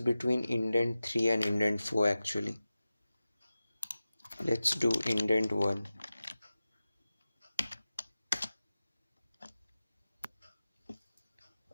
indent 3 and indent 4 actually. Let's do indent 1.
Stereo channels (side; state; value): both; inverted; correlation -0.95